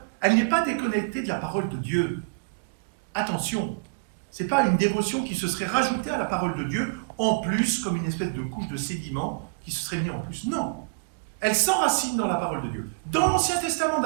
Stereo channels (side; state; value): left; quieter; 33.8 dB